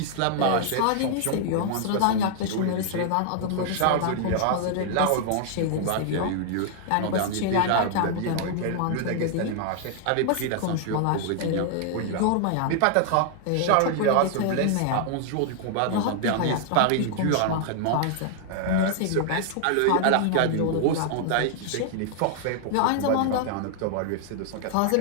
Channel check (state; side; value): different; both; correlation 0.00